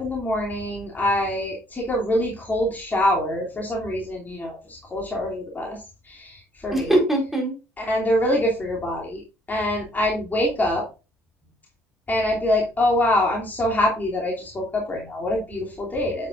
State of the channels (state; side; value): normal; both; correlation 0.65